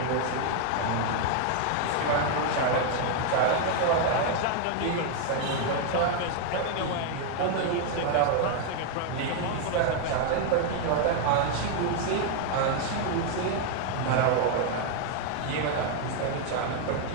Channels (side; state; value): both; different; correlation 0.00